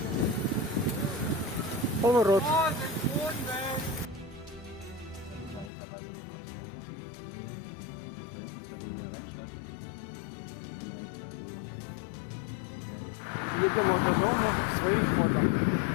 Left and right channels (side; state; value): right; drops out; at 5.7 s